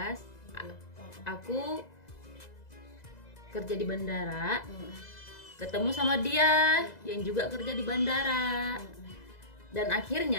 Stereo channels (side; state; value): right; late; 2.0 ms